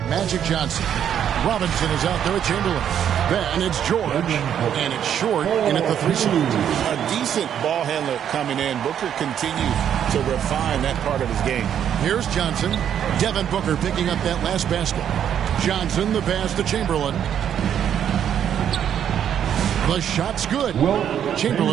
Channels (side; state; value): left; quieter; 9.3 dB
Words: Magic Johnson. Robinson is out there with Chamberlain. Then it's George, and it's short in at the 3 slot. A decent ball handler coming in. Booker continues to refine that part of his game. Here's Johnson. Devin Booker picking up that last basket. Johnson, the pass to Chamberlain. The shot's good.